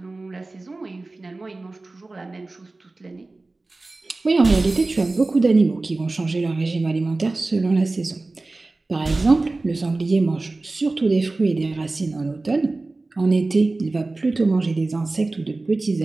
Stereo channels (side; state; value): left; quieter; 3.2 dB